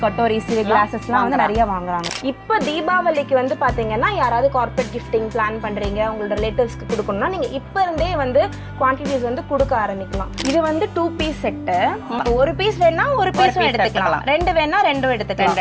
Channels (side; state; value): both; identical; correlation 1.00